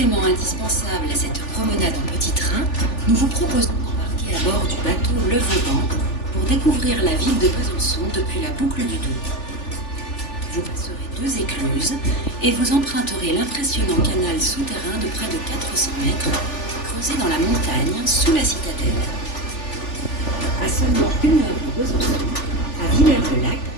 indispensable à cette promenade en petit train, nous vous proposons d'embarquer à bord du bateau Le Vauban pour découvrir la ville de Besançon depuis la boucle du Doubs. Vous passerez 2 écluses et vous emprunterez l'impressionnant canal souterrain de près de 400 mètres, creusé dans la montagne sous la citadelle. À seulement 1 heure de Besançon, à Villers-le-Lac,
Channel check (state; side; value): late; right; 3.4 ms